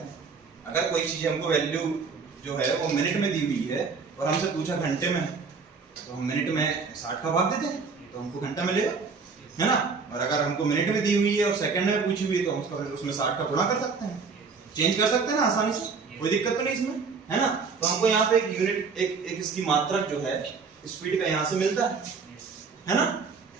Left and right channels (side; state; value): left; quieter; 5.0 dB